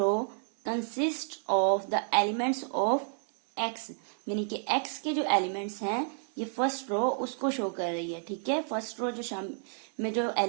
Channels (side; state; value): left; silent; digital silence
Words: consist of the elements of x, यानी कि x के जो एलिमेंट्स हैं ये फर्स्ट रो उसको शो कर रही है, ठीक है। फर्स्ट रो में जो